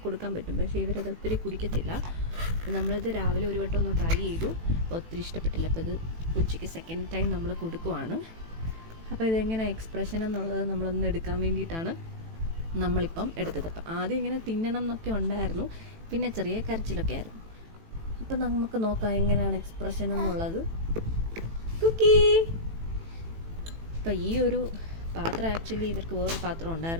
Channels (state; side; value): late; left; 18 ms